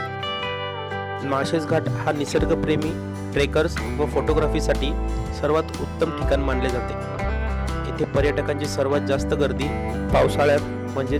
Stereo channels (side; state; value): both; identical; correlation 1.00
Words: माळशेज घाट हा निसर्गप्रेमी ट्रेकर्स व फोटोग्राफीसाठी सर्वात उत्तम ठिकाण मानले जाते. येथे पर्यटकांची सर्वात जास्त गर्दी पावसाळ्यात म्हणजे